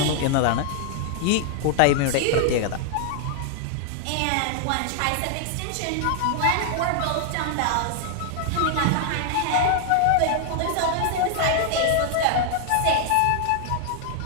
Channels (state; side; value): different; both; correlation 0.00